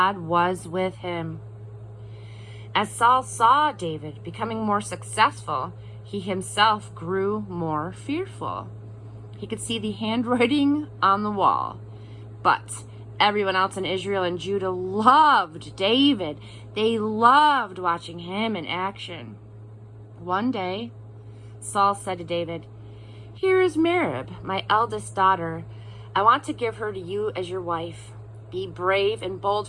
was with him. As Saul saw David becoming more successful, he himself grew more fearful. He could see the handwriting on the wall. But everyone else in Israel and Judah loved David. They loved watching him in action. One day, Saul said to David, "Here is Merab, my eldest daughter. I want to give her to you as your wife. Be brave and bold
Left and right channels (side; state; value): both; identical; correlation 1.00